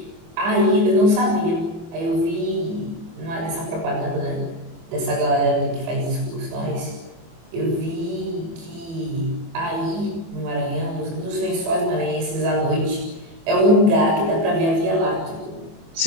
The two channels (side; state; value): left; late; 24 ms